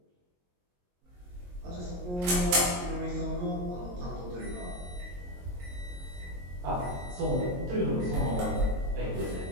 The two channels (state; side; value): late; left; 22 ms